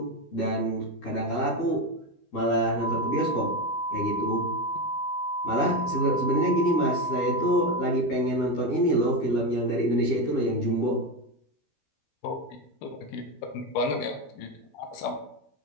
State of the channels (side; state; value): right; late; 13 ms